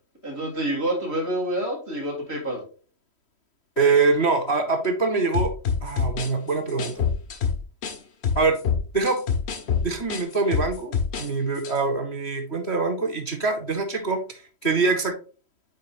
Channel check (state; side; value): late; right; 3.1 ms